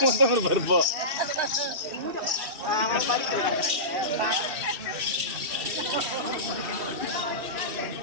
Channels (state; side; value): late; left; 2.7 ms